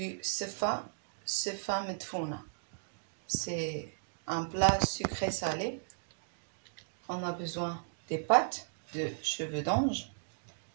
sefa medfouna. C'est un plat sucré salé. On a besoin des pâtes, de cheveux d'ange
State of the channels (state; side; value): silent; left; digital silence